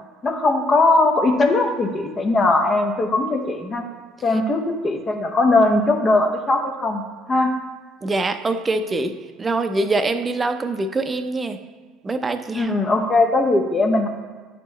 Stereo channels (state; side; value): normal; both; correlation 0.75